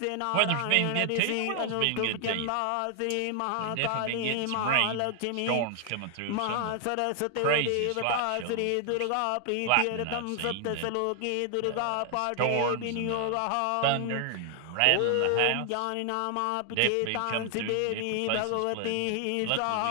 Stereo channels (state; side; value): different; both; correlation 0.00